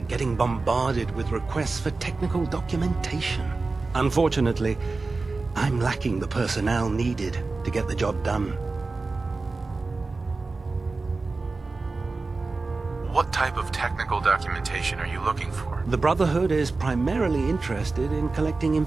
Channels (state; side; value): quieter; left; 3.7 dB